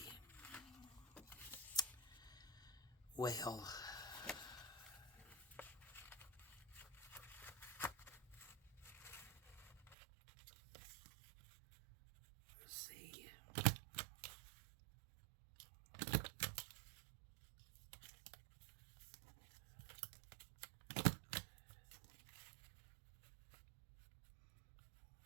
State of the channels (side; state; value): left; drops out; at 10.0 s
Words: Well, let's see.